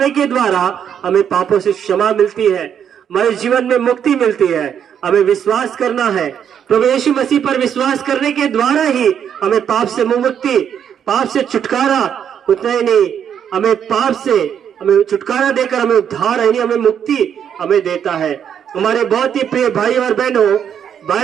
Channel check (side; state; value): left; quieter; 8.5 dB